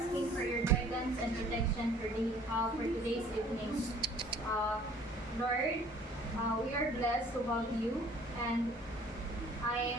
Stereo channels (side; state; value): both; normal; correlation 0.54